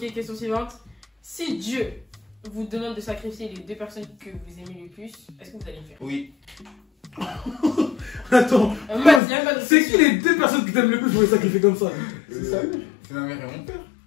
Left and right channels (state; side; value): drops out; right; at 9.2 s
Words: question suivante. Si Dieu vous demande de sacrifier les 2 personnes que vous aimez le plus, est-ce que vous allez le faire? Oui. Attends, c'est qui les 2 personnes que t'aimes le plus pour les sacrifier comme ça? C'est ça, oui. C'est ma mère et mon père.